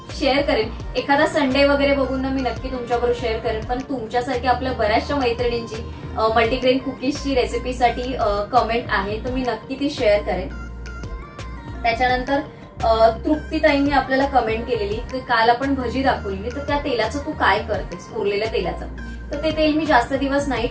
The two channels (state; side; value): identical; both; correlation 1.00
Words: शेअर करेन. एखादा संडे वगैरे बघून ना मी नक्की तुमच्याबरोबर शेअर करेन. पण तुमच्यासारखी आपल्या बऱ्याचशा मैत्रिणींची मल्टीग्रेन कुकीजची रेसिपीसाठी कमेंट आहे तर मी नक्की ती शेअर करेन. त्याच्यानंतर तृप्तीताईंनी आपल्याला कमेंट केलेली की काल आपण भजी दाखवलेली, तर त्या तेलाचं तू काय करतेस, उरलेल्या तेलाचं. तर ते तेल मी जास्त दिवस नाही